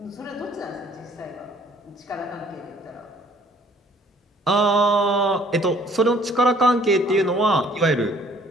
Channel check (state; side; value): normal; both; correlation 0.58